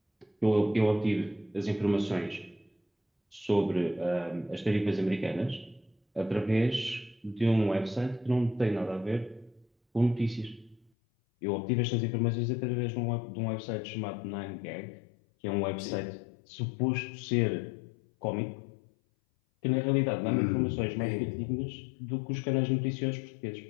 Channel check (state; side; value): drops out; right; at 10.9 s